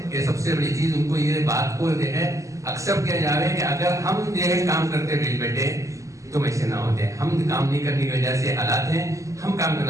کہ سب سے بڑی چیز ان کو یہ بات کو جو ہے ایکسپٹ کیا جاوے کہ اگر ہم جو ہے کام کرتے ہوئے بیٹے تم ایسے نہ ہوتے. ہم کام نہیں کرنے کی وجہ سے حالات ہیں، ہم کام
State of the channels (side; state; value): left; late; 0.16 ms